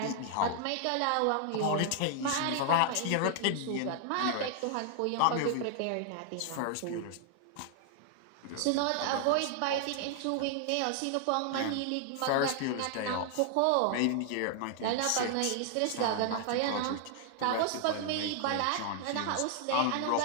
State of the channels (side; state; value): both; different; correlation 0.00